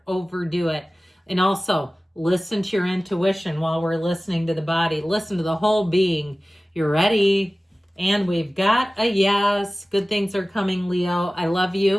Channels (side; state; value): both; normal; correlation 0.97